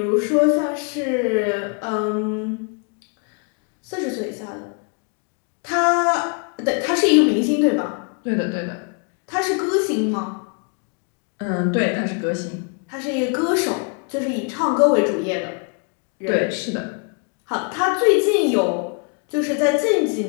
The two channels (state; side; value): quieter; right; 39.2 dB